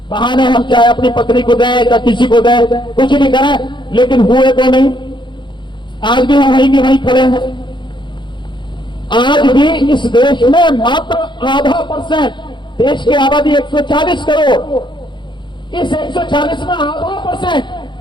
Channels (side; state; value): right; late; 0.23 ms